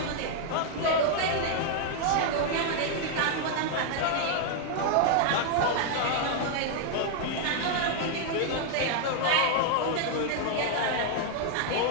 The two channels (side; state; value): both; different; correlation 0.00